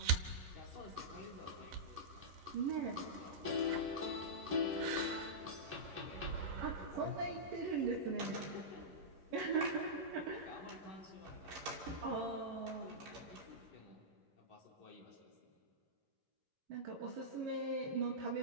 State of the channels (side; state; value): left; late; 11 ms